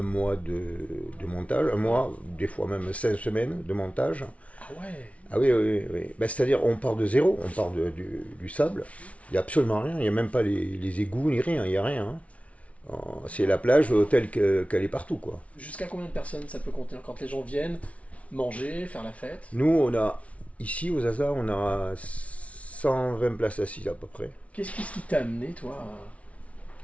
mois de montage, un mois, des fois même 5 semaines de montage. Ah ouais. Ah oui, oui, oui. Ben, c'est-à-dire, on part de zéro, on part du sable. Il n'y a absolument rien, il n'y a même pas les égouts ni rien, il n'y a rien. Hein. C'est la plage telle qu'elle est partout, quoi. Jusqu'à combien de personnes ça peut contenir quand les gens viennent manger, faire la fête? Nous, on a, ici, aux Zaza, on a 120 places assises à peu près. Qu'est-ce qui t'a amené, toi,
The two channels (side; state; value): right; late; 0.065 ms